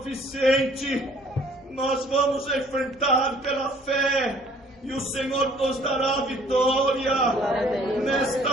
nós vamos enfrentar pela fé e o Senhor nos dará a vitória.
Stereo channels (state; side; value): normal; both; correlation 0.57